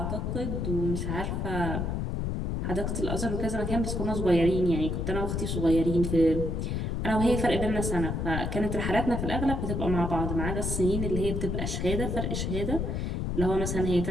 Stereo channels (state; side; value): noise; left; rumble, 1 dB below the sound